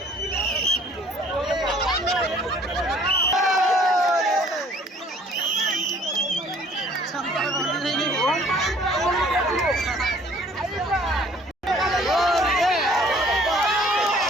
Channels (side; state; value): both; normal; correlation 0.56